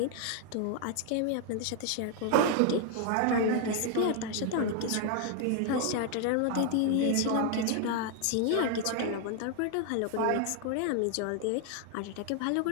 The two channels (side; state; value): both; different; correlation 0.00